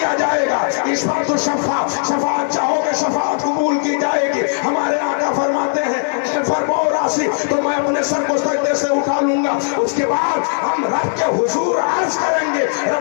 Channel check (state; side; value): silent; right; 68 dB below the other